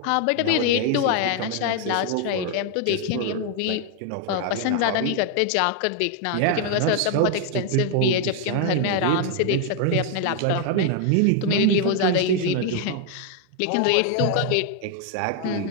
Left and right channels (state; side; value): different; both; correlation 0.00